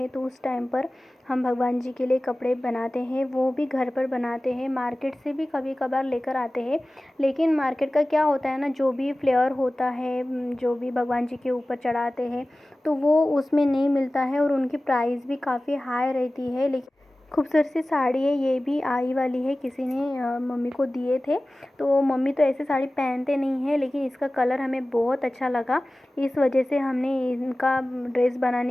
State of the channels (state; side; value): normal; both; correlation 0.97